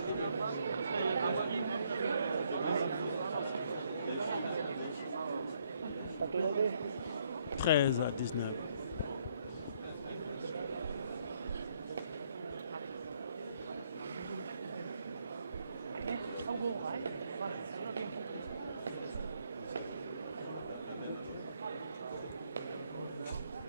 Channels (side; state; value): both; inverted; correlation -0.70